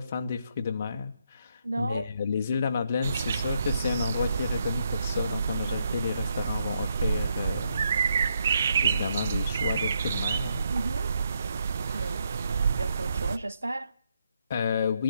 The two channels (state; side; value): inverted; both; correlation -0.77